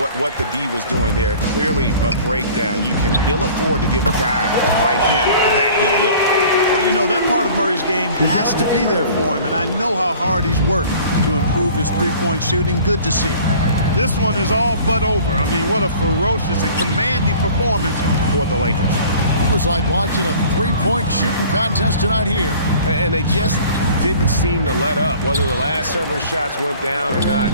what the D was doing there. Clearly a breakdown. You can ill afford to give a guy like him that good look. Well, you know, that part of Murray's game has to be there for him, and I know how hard he's worked to improve his three-point shooting. Good to see. This one is all but over. I mean, what a ferocious and commanding performance for the Lakers. It was like watching a three-point shooting contest tonight here. And they just didn't seem to let up. Whether the last several shots went down or not,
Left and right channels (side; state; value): both; inverted; correlation -0.47